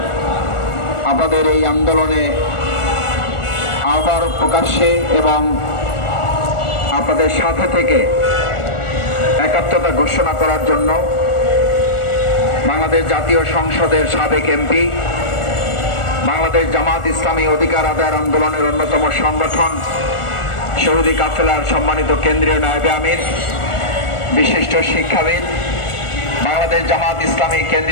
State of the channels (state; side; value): late; right; 1.4 ms